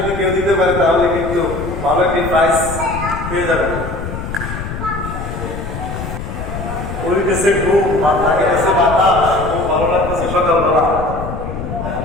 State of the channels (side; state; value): left; noise; rumble, 7 dB below the sound